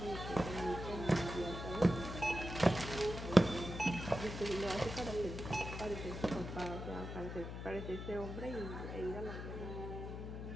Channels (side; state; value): left; noise; hum, 7 dB below the sound